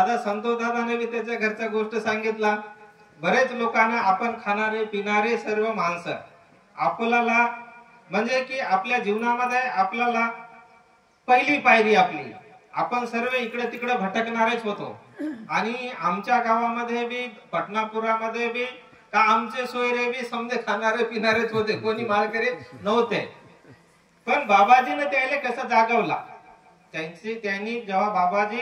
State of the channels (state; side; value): identical; both; correlation 1.00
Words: संतोष दादाने बी त्याच्या घरच्या गोष्ट सांगितला. बरेच लोकांना आपण खाणारे पिणारे सर्व माणसं आपल्याला, म्हणजे की आपल्या जीवनामध्ये आपल्याला पहिली पायरी आपली, आपण सर्व इकडे तिकडे भटकणारेच होतो. आणि आमच्या गावामध्ये बी पटनापुरामध्ये बी का आमचे सोयरे बी समजे खाणारे पिणारेच होते, कोणी माळकरी नव्हते. पण बाबाजीने त्याला कसं जागवला, त्यांनी जेव्हा बाबाजी